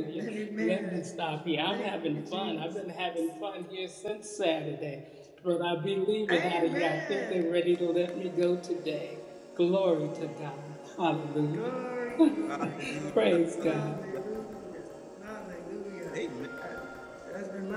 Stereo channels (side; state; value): both; identical; correlation 1.00